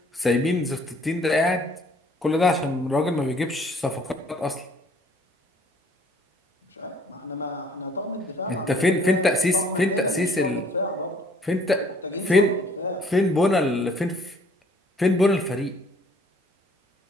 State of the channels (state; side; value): normal; both; correlation 0.59